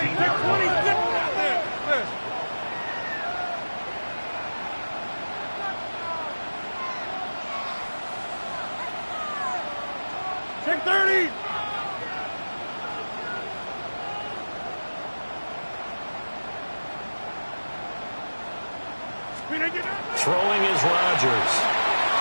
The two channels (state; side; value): inverted; both; correlation -1.00